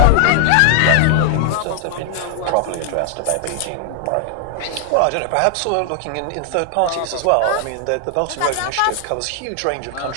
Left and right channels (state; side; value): different; both; correlation 0.00